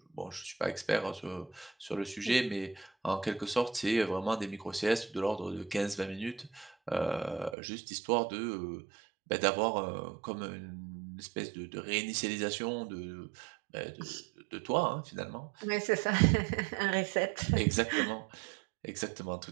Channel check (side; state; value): left; drops out; at 7.6 s